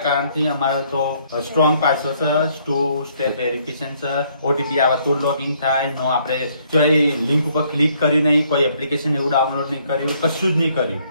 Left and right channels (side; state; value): both; inverted; correlation -0.67